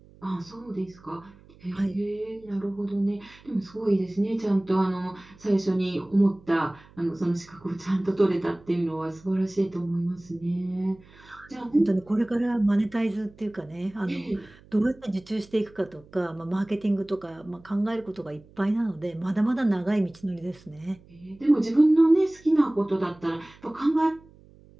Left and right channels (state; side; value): noise; right; hum, 25 dB below the sound